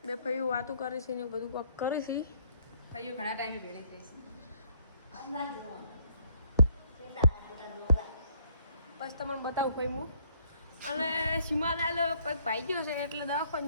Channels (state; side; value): inverted; both; correlation -0.66